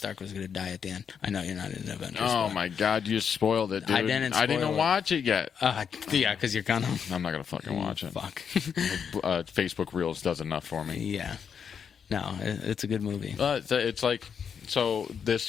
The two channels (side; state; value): right; quieter; 7.1 dB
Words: was going to die at the end. I know you're not in Avengers. Oh my God, you spoiled it, dude. I didn't even watch it yet. Yeah, because you're gonna. I'm not gonna fucking watch it. Fuck. Facebook Reels does enough for me. Yeah. No, it's a good movie. It's like, so